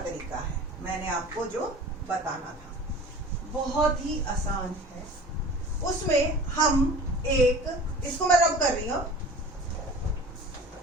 तरीका है, मैंने आपको जो बताना था, बहुत ही आसान है। उसमें हम इसको मैं रब कर रही हूं,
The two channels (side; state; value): both; normal; correlation 0.41